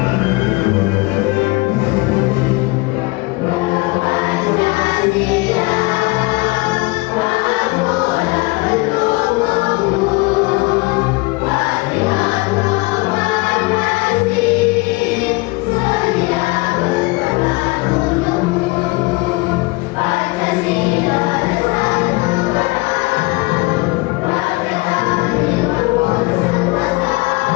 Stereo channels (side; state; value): right; quieter; 24.5 dB